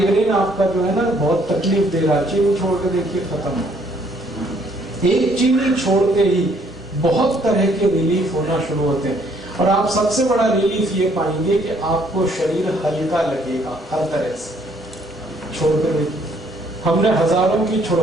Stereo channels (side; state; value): both; normal; correlation 0.65